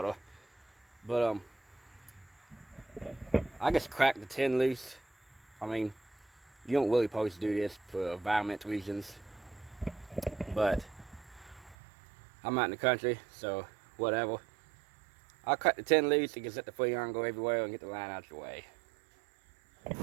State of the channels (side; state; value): left; drops out; at 11.8 s